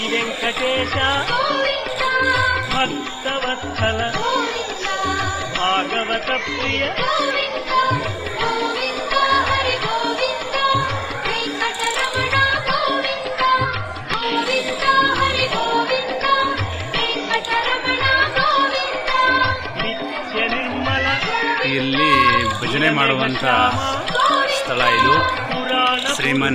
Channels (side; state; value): both; identical; correlation 1.00